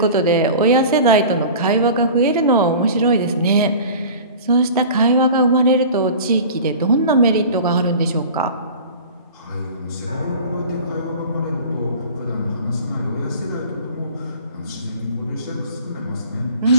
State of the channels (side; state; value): both; inverted; correlation -0.39